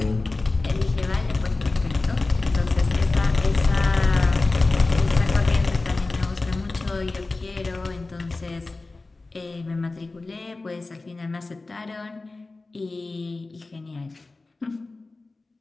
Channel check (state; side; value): quieter; right; 3.4 dB